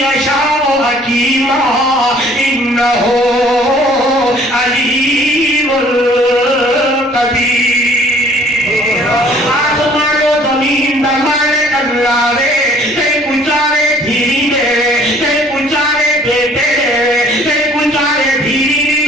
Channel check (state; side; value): normal; both; correlation 0.56